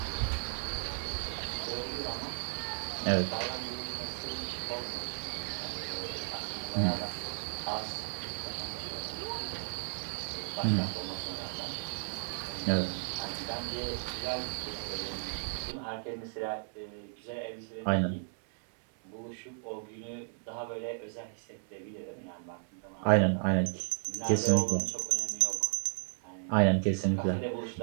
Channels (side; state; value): left; silent; digital silence